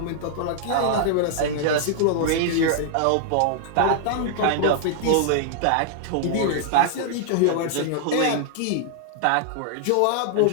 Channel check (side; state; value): both; different; correlation -0.01